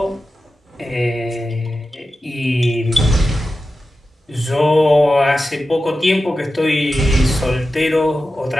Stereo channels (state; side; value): normal; both; correlation 0.92